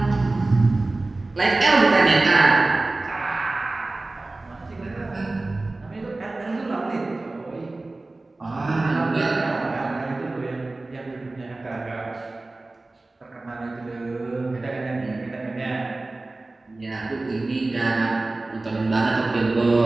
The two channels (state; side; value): quieter; left; 3.1 dB